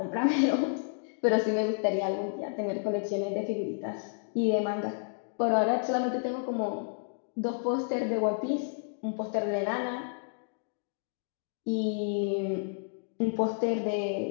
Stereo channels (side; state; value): right; silent; digital silence